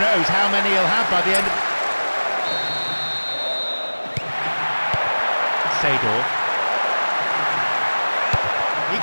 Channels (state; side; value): inverted; both; correlation -1.00